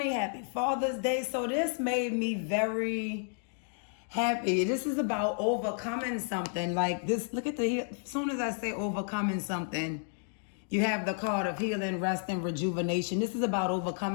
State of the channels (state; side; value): silent; right; 57 dB below the other